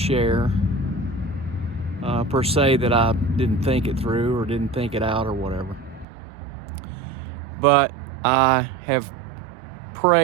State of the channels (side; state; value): left; drops out; at 6.1 s